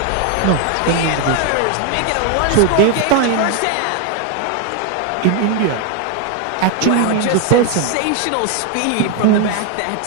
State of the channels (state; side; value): different; both; correlation 0.01